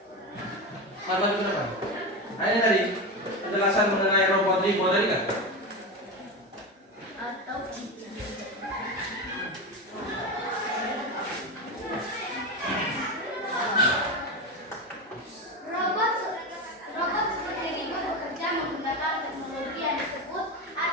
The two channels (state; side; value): normal; both; correlation 0.20